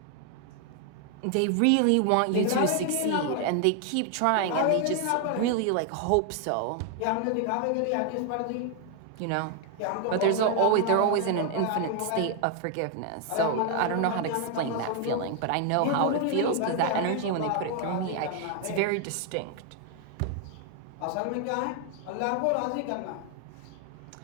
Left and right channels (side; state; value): both; different; correlation 0.00